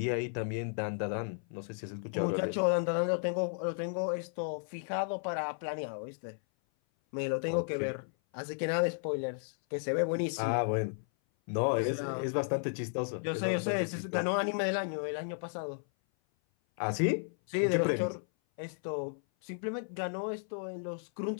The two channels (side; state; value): right; silent; 55 dB below the other